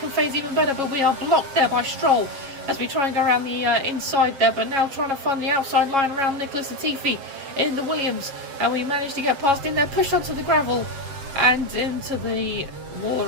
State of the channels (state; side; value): late; left; 7.7 ms